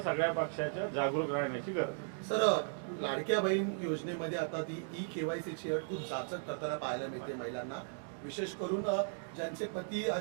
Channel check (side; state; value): left; silent; digital silence